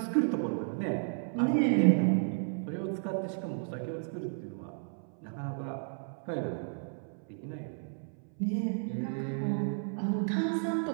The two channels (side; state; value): left; silent; 56 dB below the other